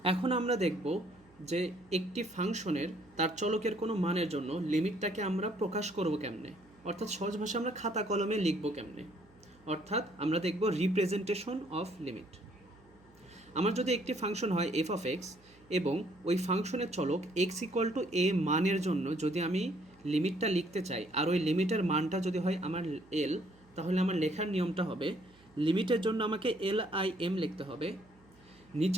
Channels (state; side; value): noise; right; hum, 29 dB below the sound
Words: এখন আমরা দেখব যে একটি ফাংশনের তার চলকের কোনো মানের জন্য লিমিটটাকে আমরা প্রকাশ করব কেমনে, অর্থাৎ সহজ ভাষায় আমরা খাতা কলমে লিখব কেমনে। অর্থাৎ আমরা দেখব রিপ্রেজেন্টেশন অফ লিমিট। আমার যদি একটি ফাংশন হয় f(x) এবং ওই ফাংশনের চলক x = a মানের জন্য যদি আমি লিমিটটা লিখতে চাই, আর ওই লিমিটের মানটা যদি হয় আমার l, তাহলে আমার লেখার নিয়মটা হবে লিমিটের জন্য আমাকে lim লিখতে হবে,